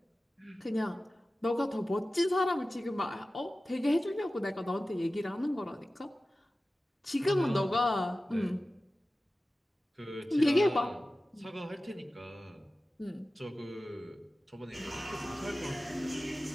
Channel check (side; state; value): both; normal; correlation 0.96